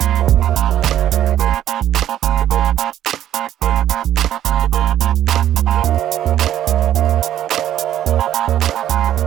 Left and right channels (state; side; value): quieter; left; 11.8 dB